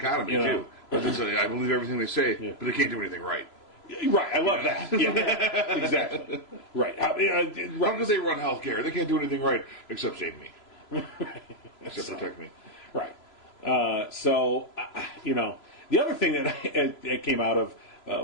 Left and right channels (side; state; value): right; late; 3.0 ms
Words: too. But I believe everything they say, but they can't do anything right. Right, I love that. Yeah, exactly. Right. How could they run healthcare? They can't do anything right except save me, except protect me. Right. The other thing that came out of